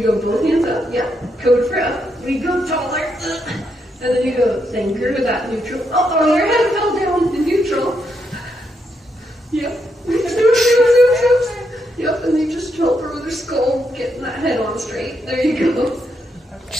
go both hands up, yeah, code for up. We go taller, and then you go thinker with that neutral. Oh, your head fell down in neutral. Yep. Yep, and you just help her with her skull, getting that head on straight. There you go.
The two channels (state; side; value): normal; both; correlation 0.80